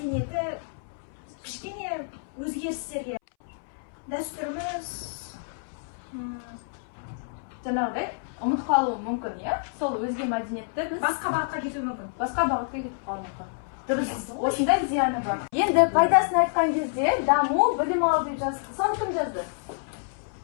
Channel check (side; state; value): right; silent; 59 dB below the other